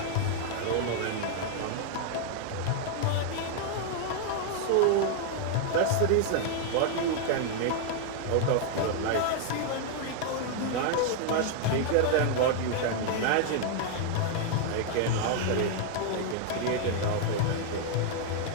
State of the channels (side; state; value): both; different; correlation 0.00